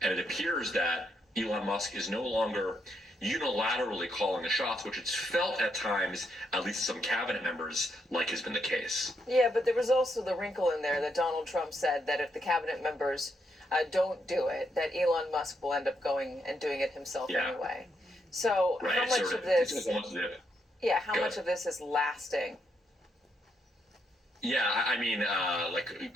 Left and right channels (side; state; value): both; normal; correlation 0.78